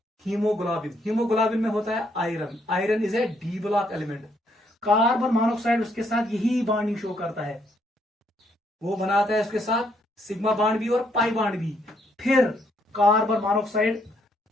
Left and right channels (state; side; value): normal; both; correlation 0.72